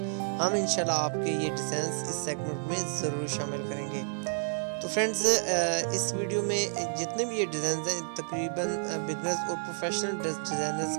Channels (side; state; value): left; silent; 58 dB below the other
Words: हम इंशाल्लाह आपके ये डिज़ाइन इस सेगमेंट में ज़रूर शामिल करेंगे। तो फ्रेंड्स, इस वीडियो में जितने भी ये डिज़ाइन हैं तकरीबन बिगनर्स और प्रोफेशनल डिज़ाइनर्स